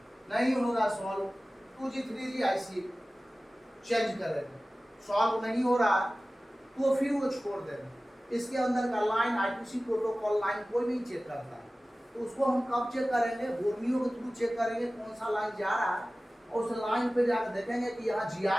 नहीं होगा solve, 2G 3G IC change करेगा, सॉल्व नहीं हो रहा तो फिर वो छोड़ देगा। इसके अंदर का लाइन I2C प्रोटोकॉल लाइन कोई नहीं चेक करता है, तो उसको हम कब चेक करेंगे? बोर्नियो के थ्रू चेक करेंगे कौन सा लाइन जा रहा है और उस लाइन पे जाकर देखेंगे कि यहाँ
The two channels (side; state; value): both; normal; correlation 0.97